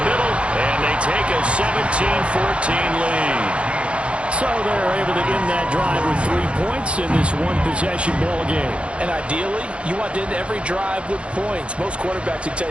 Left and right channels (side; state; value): left; late; 0.060 ms